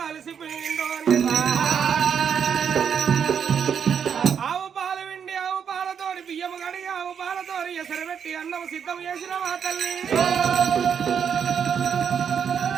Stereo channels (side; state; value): left; quieter; 7.5 dB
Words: అలసిపోయిందో ఆవు పాలు విండి ఆవు పాలతోడి బియ్యం కడిగి ఆవు పాలతోడి ఎసరు పెట్టి అన్నం సిద్ధం చేసిన మా తల్లి